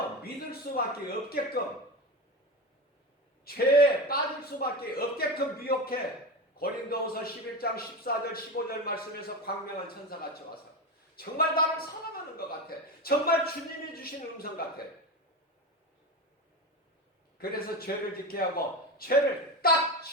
믿을 수밖에 없게끔 죄에 빠질 수밖에 없게끔 미혹해. 고린도후서 11장 14절 15절 말씀에서 광명한 천사같이 와서 정말 나를 사랑하는 것 같아. 정말 주님이 주신 음성 같아. 그래서 죄를 짓게 하고 죄를 딱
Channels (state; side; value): normal; both; correlation 0.22